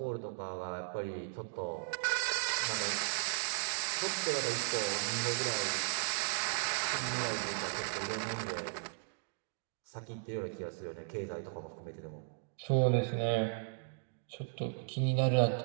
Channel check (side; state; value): left; silent; digital silence